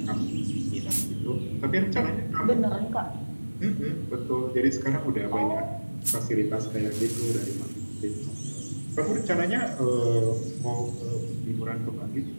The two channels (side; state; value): both; inverted; correlation -1.00